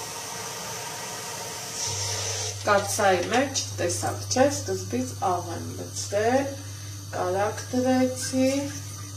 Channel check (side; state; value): both; identical; correlation 1.00